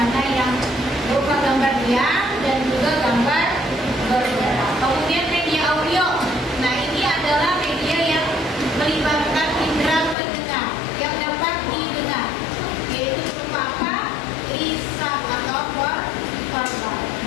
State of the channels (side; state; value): right; drops out; at 10.2 s